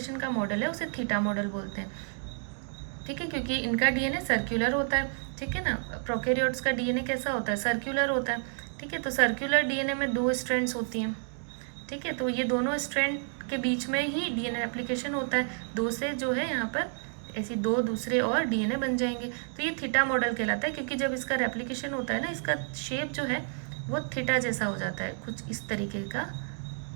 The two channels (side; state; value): left; silent; 58 dB below the other